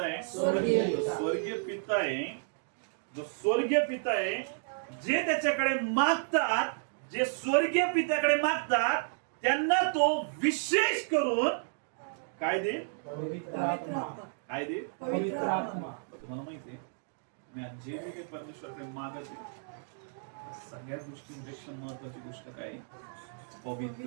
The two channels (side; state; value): left; silent; digital silence